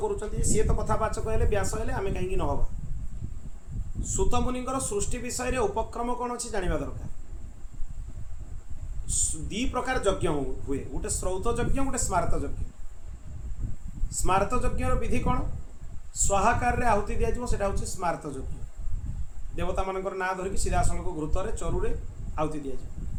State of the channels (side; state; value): both; identical; correlation 1.00